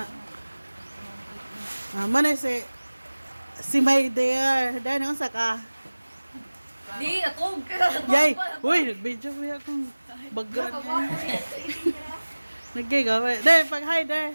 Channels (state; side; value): inverted; both; correlation -1.00